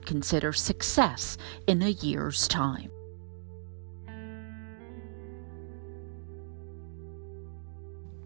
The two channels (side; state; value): left; silent; digital silence